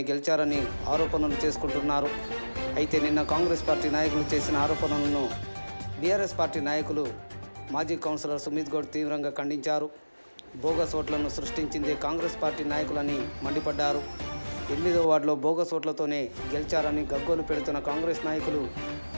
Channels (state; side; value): inverted; both; correlation -1.00